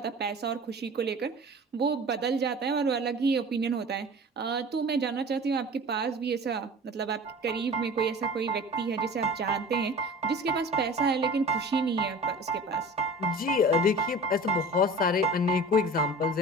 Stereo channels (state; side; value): normal; both; correlation 0.39